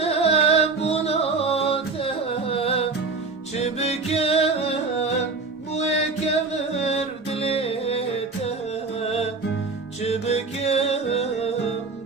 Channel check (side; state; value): left; quieter; 4.1 dB